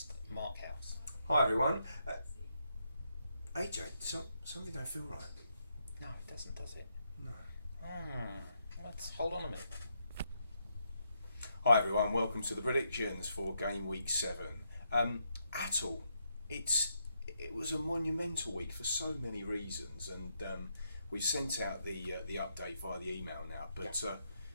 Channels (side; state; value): both; inverted; correlation -0.79